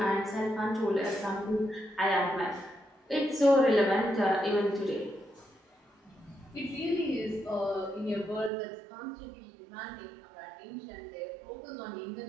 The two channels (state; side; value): drops out; left; at 8.5 s